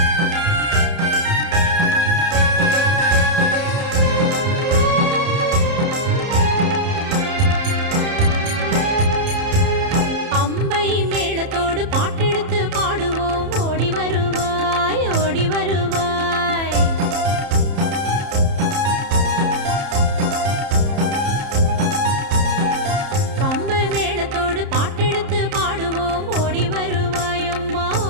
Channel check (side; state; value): left; late; 30 ms